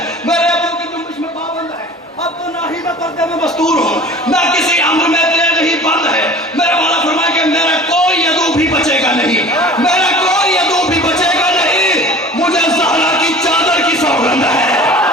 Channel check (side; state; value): both; normal; correlation 0.42